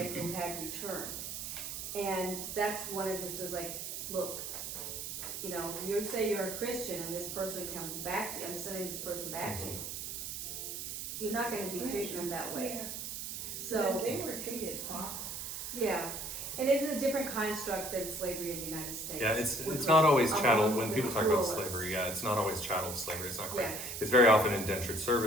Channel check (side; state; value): right; noise; hiss, 6 dB below the sound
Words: who had returned. And that's one of his, like, look, you say you're a Christian and this person comes back to you, I'm sending this person back to you. You're not gonna be treating them that way. Yeah, So, because they were treated properly. yeah, and it's a different construct than slavery in the United States. Yeah, it's which not was always chattel. among When the people talk about cruelest. slavery, yeah, it's not always chattel slavery. It's not quite. Yeah. It's very often indentured